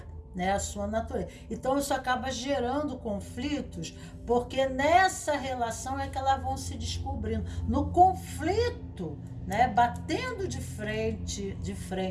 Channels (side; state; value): both; identical; correlation 1.00